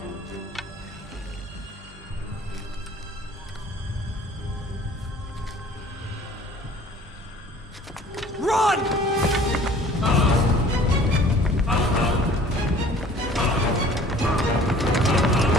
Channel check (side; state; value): both; normal; correlation 0.50